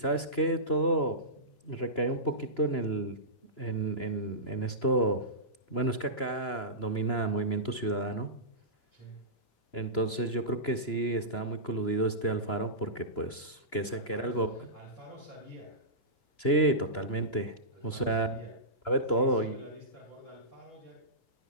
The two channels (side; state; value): right; late; 2.9 ms